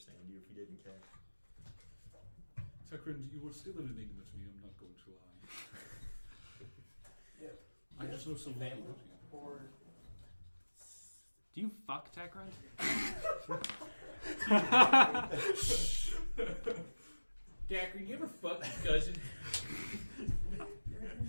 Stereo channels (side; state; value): both; inverted; correlation -1.00